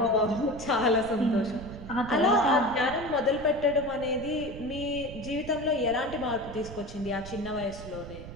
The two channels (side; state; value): right; noise; rumble, 13 dB below the sound